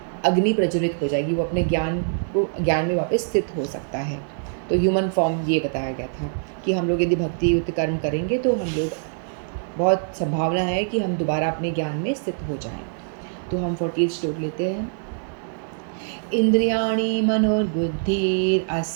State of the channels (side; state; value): left; silent; 59 dB below the other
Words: अग्नि प्रज्वलित हो जाएगी, वो अपने ज्ञान में वापस स्थित हो सकता है। तो ह्यूमन फॉर्म ये बताया गया था कि हम लोग यदि भक्ति युक्त कर्म करेंगे तो हम लोग, बहुत संभावना है कि हम दोबारा अपने ज्ञान में स्थित हो जाएं। तो हम 40 श्लोक लेते हैं। इंद्रियाणि